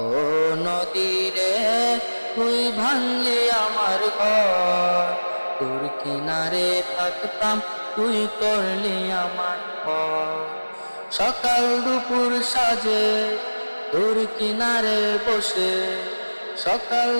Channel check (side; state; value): both; inverted; correlation -1.00